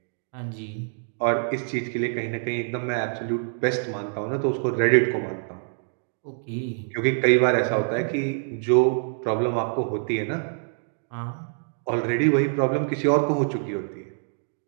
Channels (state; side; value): silent; left; digital silence